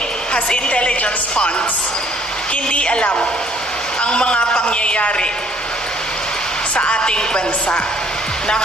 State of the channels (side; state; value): both; normal; correlation 0.61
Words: has intelligence funds, hindi alam ang mga pangyayari sa ating bansa.